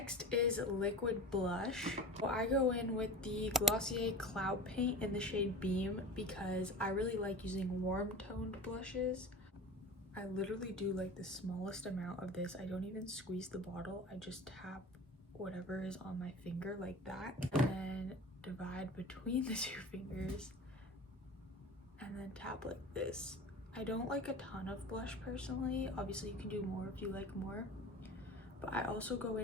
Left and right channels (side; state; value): both; normal; correlation 0.35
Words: is liquid blush. So I go in with the Glossier Cloud Paint in the shade Beam because I really like using warm toned blushes. I literally do like the smallest amount of this. I don't even squeeze the bottle. I just tap whatever is on my finger like that, and then divide between the 2 fingers, and then tap like this. I don't like a ton of blush personally. Obviously you can do more if you like more, but I also go